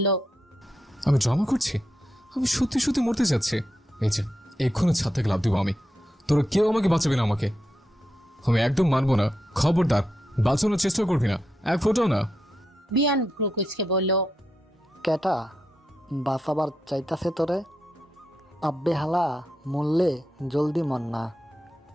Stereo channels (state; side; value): normal; both; correlation 0.85